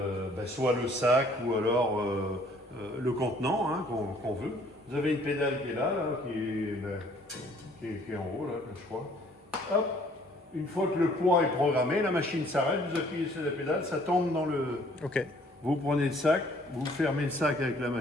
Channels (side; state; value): both; normal; correlation 0.59